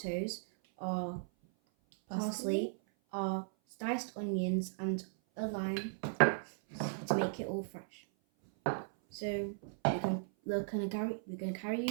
our parsley, our diced onions and a lime to make it all fresh. So we're gonna carry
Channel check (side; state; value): left; silent; 53 dB below the other